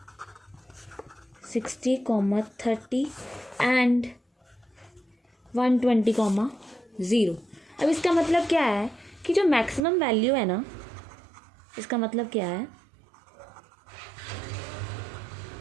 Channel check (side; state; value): left; drops out; at 9.8 s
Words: and 120,0. अब इसका मतलब क्या है कि जो मैक्सिमम वैल्यू है ना, इसका मतलब क्या है,